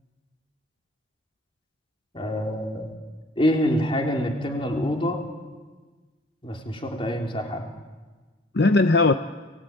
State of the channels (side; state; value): both; normal; correlation 0.53